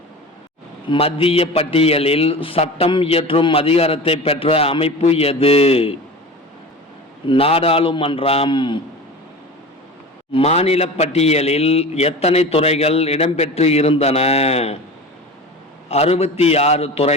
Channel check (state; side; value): normal; both; correlation 0.33